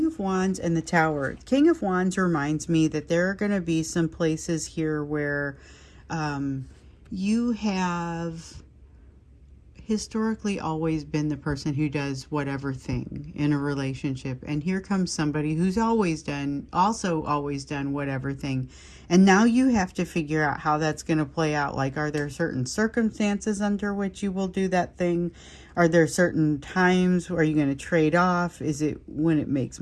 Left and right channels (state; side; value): identical; both; correlation 1.00